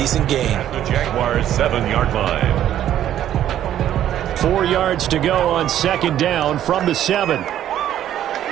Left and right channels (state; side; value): quieter; left; 11.5 dB